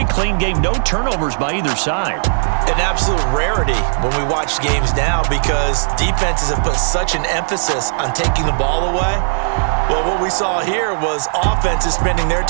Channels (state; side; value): silent; left; digital silence